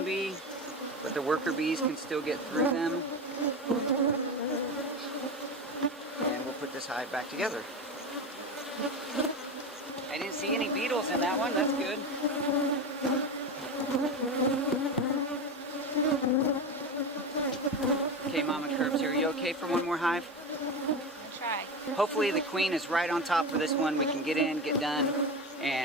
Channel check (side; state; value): both; normal; correlation 0.22